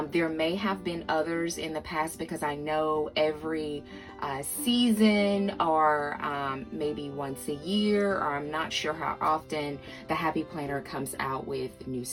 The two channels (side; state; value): both; identical; correlation 1.00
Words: There may have been others in the past because I know every season or maybe once a year, or I'm not sure how often, the Happy Planner comes out with new